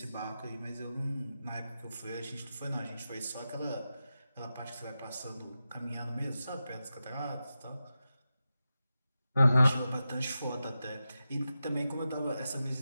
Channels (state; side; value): inverted; both; correlation -0.91